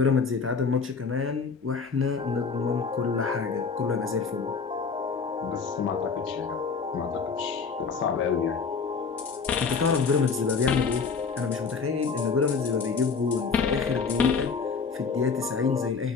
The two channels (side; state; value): right; quieter; 5.2 dB